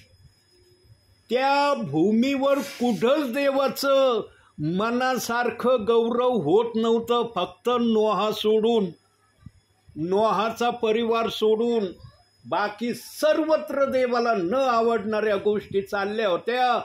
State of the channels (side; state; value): both; identical; correlation 1.00